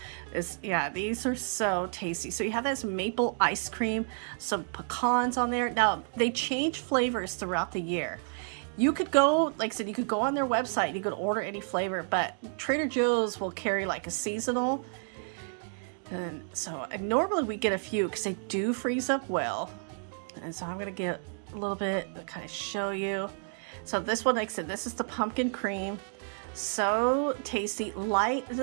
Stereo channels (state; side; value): silent; left; 57 dB below the other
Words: are so tasty. So you have this maple ice cream, some pecans on there. Now, they change flavors throughout the year. You could go, like I said, you could go on their website, you could order any flavor, but Trader Joe's will carry like a seasonal. And normally we get a few because they do freeze up well. And so I'm going to get a little bit to kind of show you. So this one, like I said, this is the pumpkin cream. So tasty, light. It